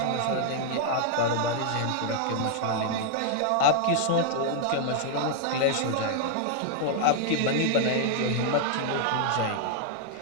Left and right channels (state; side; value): different; both; correlation -0.01